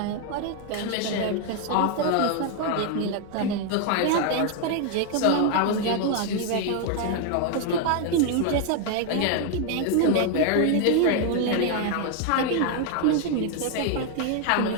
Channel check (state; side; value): different; both; correlation 0.00